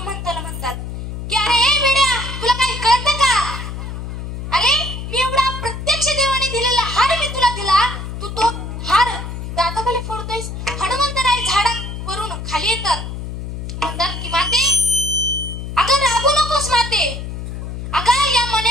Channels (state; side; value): noise; left; hum, 7 dB below the sound